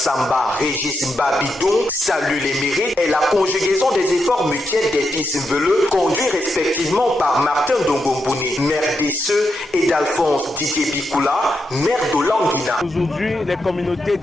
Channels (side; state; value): both; normal; correlation 0.84